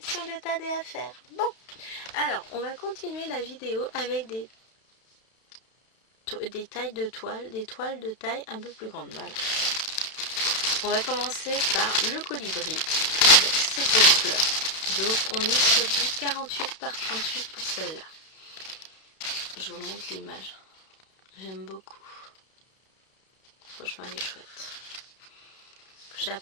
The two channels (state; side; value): late; right; 32 ms